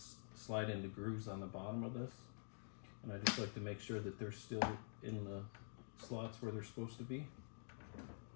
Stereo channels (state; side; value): silent; right; digital silence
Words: slide into grooves on the bottom of this, and I just like to make sure that they're still in the slots where they're supposed to be.